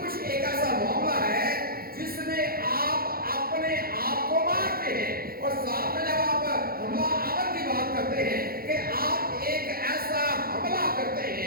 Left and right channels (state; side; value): late; left; 0.43 ms